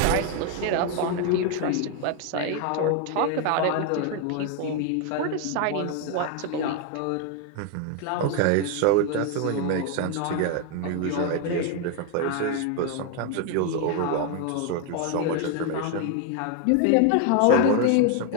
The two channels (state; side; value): different; both; correlation 0.01